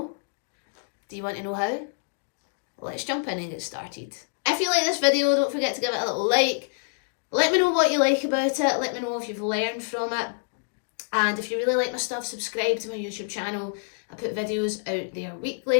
Do you want to know how? Let's jump in and get started. If you like this video, don't forget to give it a little like. Let me know what you like about it. Let me know if you've learned from it. And if you really like my stuff, subscribe to my YouTube channel. I put videos out there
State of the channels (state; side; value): silent; right; digital silence